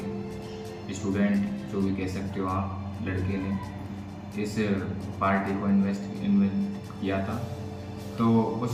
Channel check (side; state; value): both; identical; correlation 1.00